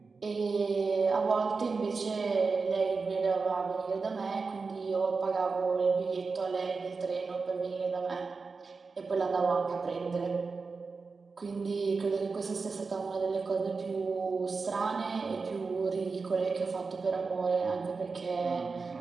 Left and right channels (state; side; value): quieter; left; 4.5 dB